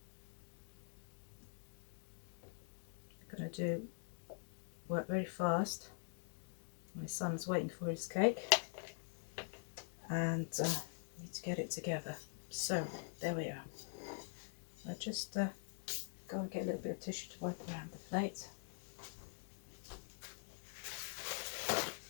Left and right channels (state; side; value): silent; right; digital silence